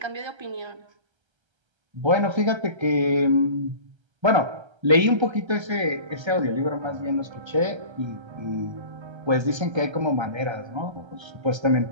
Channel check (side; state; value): left; late; 1.3 ms